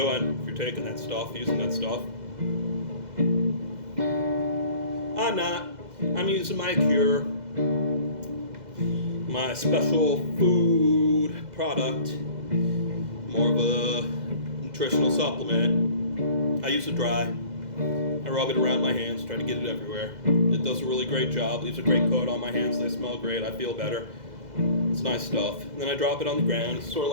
if you're taking that stuff, using that stuff. I'm not. I'm using my cure, my special food product, more of a nutritional supplement. I use it dry. I rub it around my hands, try to get it everywhere. It does a really great job, leaves a great coat on my hands, they smell great, I feel better. It's nice stuff. And then I drop it on the ground. It's sort of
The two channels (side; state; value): left; late; 2.0 ms